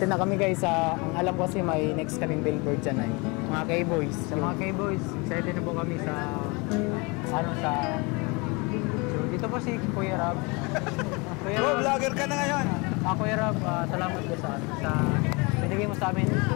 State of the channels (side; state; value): right; quieter; 28.1 dB